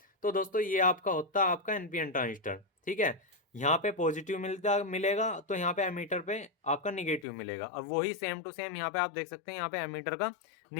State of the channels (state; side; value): drops out; right; at 7.2 s